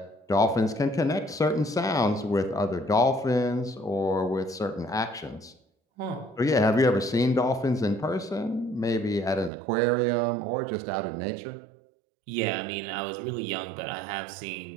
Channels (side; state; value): left; drops out; at 9.5 s